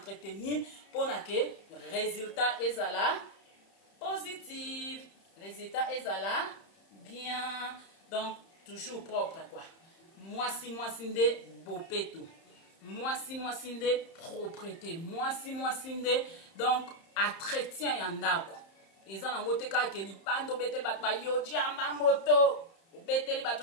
mpona ke résultat ezala positif résultat ezala bien donc toujours propre quoi mwasi nde bopeto mwasi nde propreté mwasi nde donc entretien ya ndako eza nango te kaka ke libanda obeteli bato bayoji yamba moto obeteli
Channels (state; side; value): late; right; 31 ms